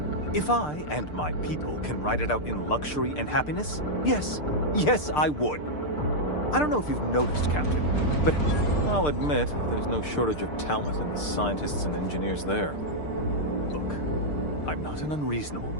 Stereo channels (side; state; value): right; late; 6.7 ms